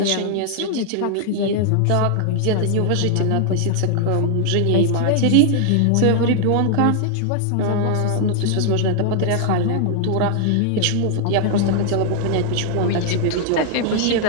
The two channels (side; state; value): both; different; correlation -0.01